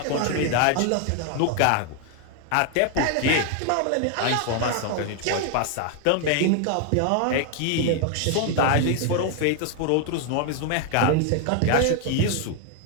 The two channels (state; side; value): different; both; correlation 0.00